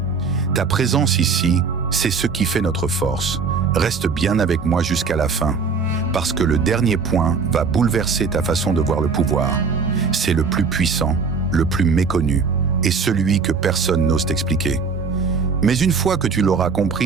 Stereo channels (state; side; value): quieter; left; 5.1 dB